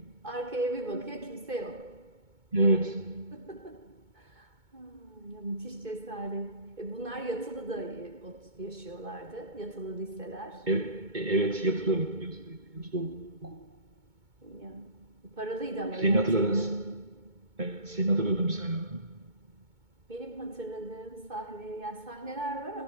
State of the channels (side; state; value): left; late; 2.2 ms